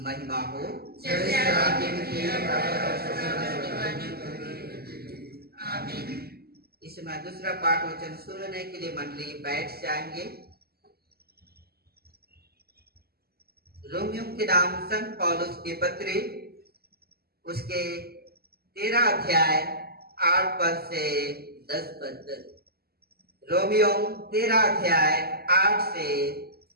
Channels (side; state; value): left; late; 0.46 ms